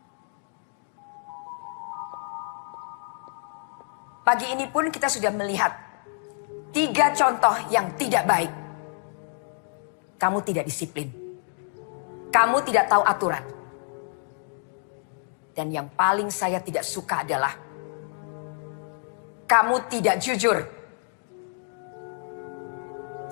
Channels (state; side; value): silent; right; 60 dB below the other